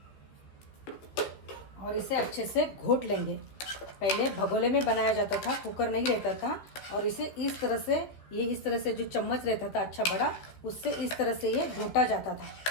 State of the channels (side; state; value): right; late; 15 ms